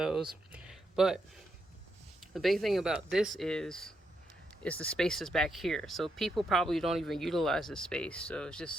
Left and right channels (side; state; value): both; normal; correlation 0.80